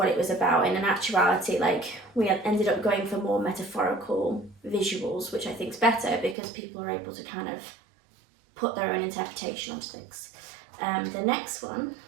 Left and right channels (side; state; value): left; drops out; at 6.4 s